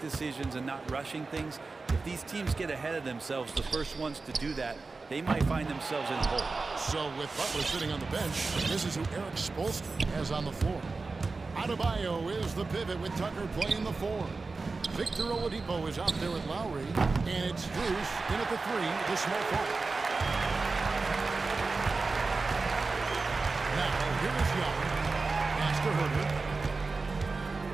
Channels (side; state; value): left; quieter; 3.9 dB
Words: decisions and not rushing things. If these teams get ahead of themselves, the first ones to do that, they might find themselves in a hole. So with Butler sitting on the bench, this is who Eric Spoelstra has on the floor. Adebayo is the pivot with Tucker playing the 4. Victor Oladipo is out there with Lowry, and it's Bruce in at the 3, the small forward. Now, here is Young. Pass to Herter.